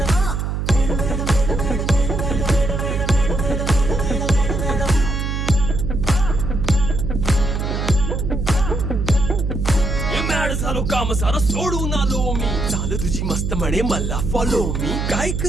झालो काम सारं सोडून आलो मी चाल तुझी मस्त म्हणे मला फॉलो मी काय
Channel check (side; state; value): right; noise; hum, 2 dB below the sound